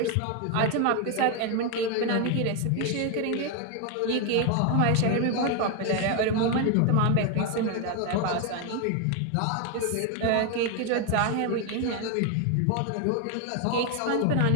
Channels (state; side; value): different; both; correlation 0.01